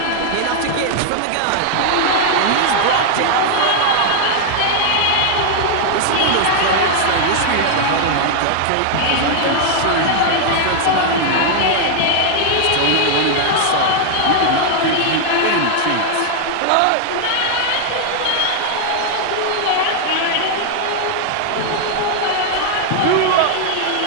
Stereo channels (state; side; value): different; both; correlation 0.00